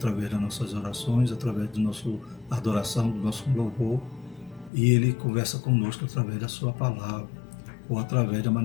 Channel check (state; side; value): drops out; right; at 4.7 s